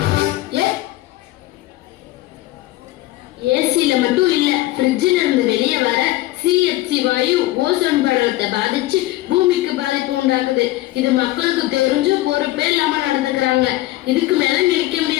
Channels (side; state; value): right; quieter; 17.1 dB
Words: ஏசில மட்டும் இல்ல, ஃப்ரிட்ஜ்ல இருந்து வெளியே வர CFC வாயு ஓசோன் படலத்தை பாதிச்சு பூமிக்கு பாதிப்பு உண்டாக்குது. இது மக்களுக்கு தெரிஞ்சு பொறுப்பே இல்லாம நடந்துக்கிறாங்க. இதுக்கு மேல நினைக்க